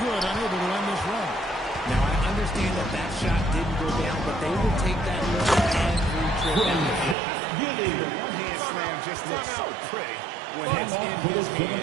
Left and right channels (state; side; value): drops out; left; at 7.2 s